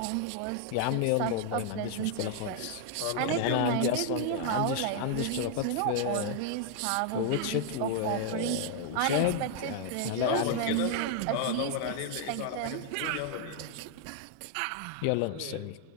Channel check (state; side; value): different; both; correlation 0.00